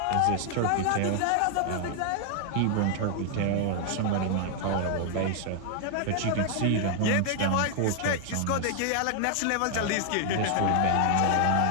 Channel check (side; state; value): both; different; correlation 0.00